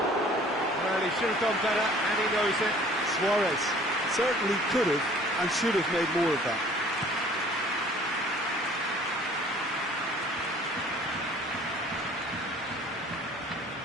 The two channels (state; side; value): normal; both; correlation 0.52